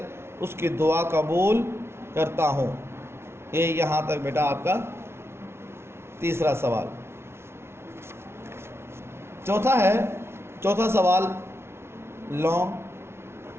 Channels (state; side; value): late; left; 0.12 ms